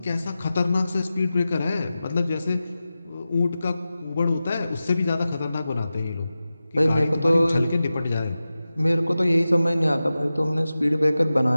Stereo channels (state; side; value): inverted; both; correlation -0.94